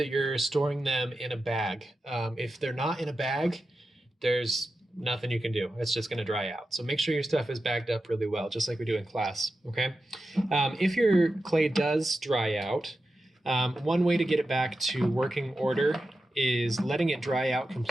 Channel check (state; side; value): normal; both; correlation 0.91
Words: you're storing them in a bag. If they're not in a bag, there's nothing you can do. It's just going to dry out. So make sure your stuff is bagged up really well, just like we do in class, okay? If your clay does dry out, one way to get it back to working order is letting it dry out